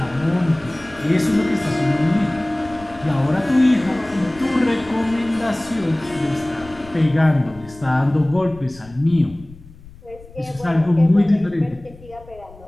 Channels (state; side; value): noise; left; rumble, 21 dB below the sound